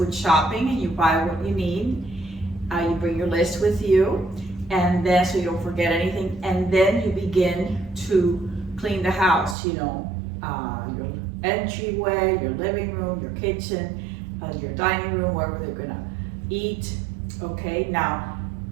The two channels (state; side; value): drops out; left; at 9.6 s